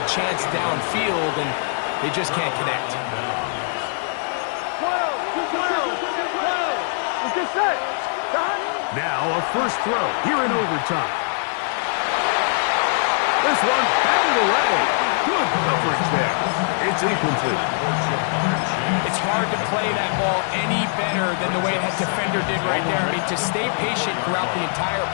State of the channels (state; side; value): silent; right; 64 dB below the other